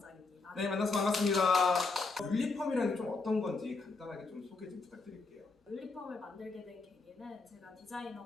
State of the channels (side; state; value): right; quieter; 3.9 dB